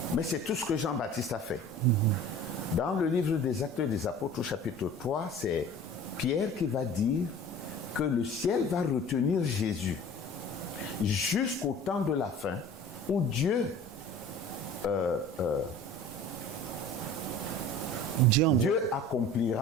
Mais c'est tout ce que Jean-Baptiste a fait. Dans le livre des Actes des Apôtres, au chapitre 3, c'est Pierre qui va dire que le ciel va retenir Jésus jusqu'au temps de la fin, où Dieu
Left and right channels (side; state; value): both; normal; correlation 0.43